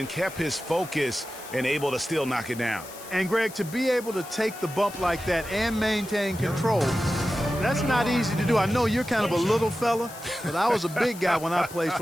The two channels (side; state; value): left; noise; hiss, 16 dB below the sound